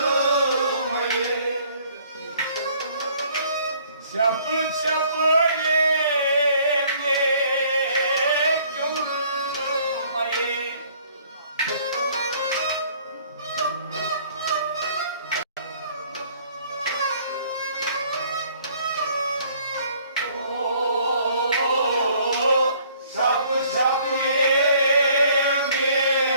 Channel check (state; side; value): inverted; both; correlation -0.59